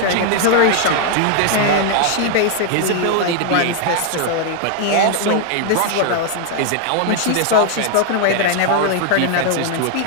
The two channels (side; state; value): both; different; correlation 0.00